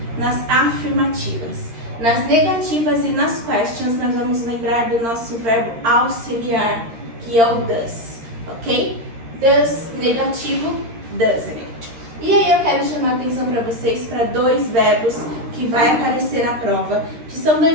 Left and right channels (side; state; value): left; late; 13 ms